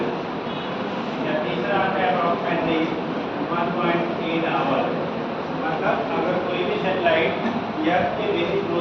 या तीसरा आता है अप्रॉक्सीमेटली 1.8 आवर। मतलब अगर कोई भी सैटेलाइट या के बेसिक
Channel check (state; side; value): identical; both; correlation 1.00